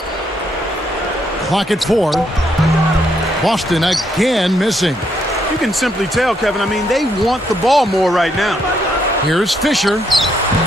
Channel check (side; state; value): both; normal; correlation 0.74